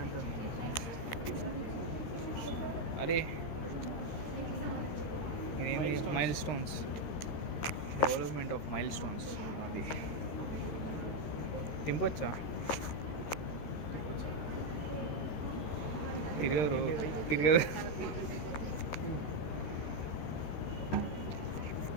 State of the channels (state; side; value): late; right; 13 ms